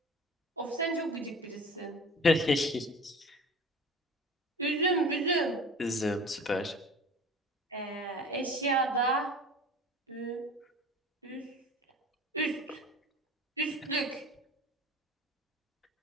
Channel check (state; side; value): normal; both; correlation 0.40